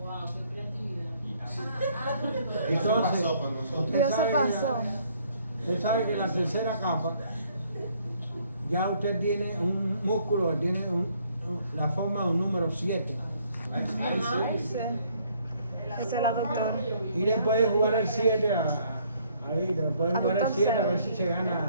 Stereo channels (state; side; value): inverted; both; correlation -0.65